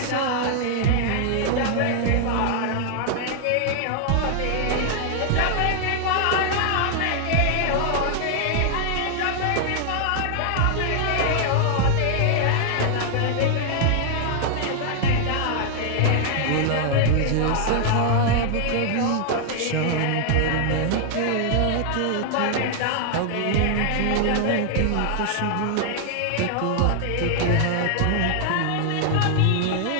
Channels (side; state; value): both; different; correlation -0.01